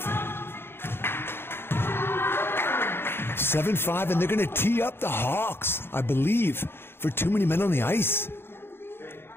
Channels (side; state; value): right; late; 0.11 ms